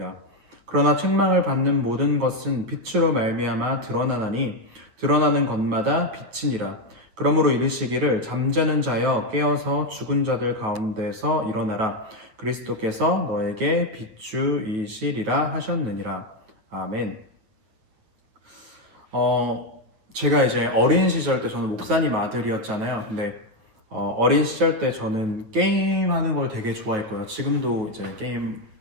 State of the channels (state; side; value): late; left; 9.0 ms